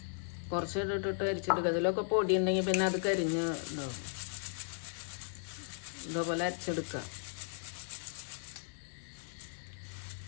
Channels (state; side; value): silent; right; digital silence